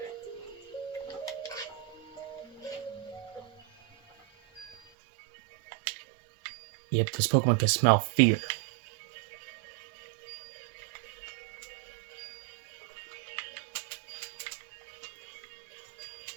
Yep, this Pokemon can smell fear.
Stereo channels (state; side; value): drops out; left; at 4.8 s